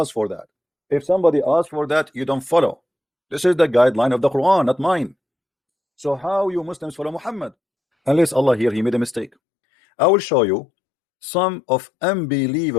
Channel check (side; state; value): right; drops out; at 9.3 s